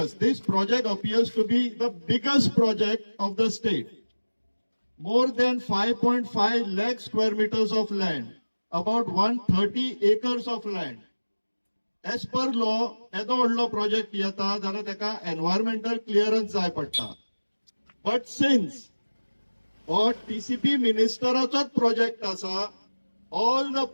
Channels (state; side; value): inverted; both; correlation -1.00